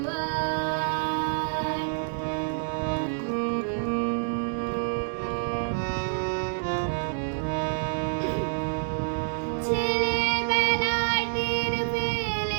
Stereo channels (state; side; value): silent; left; digital silence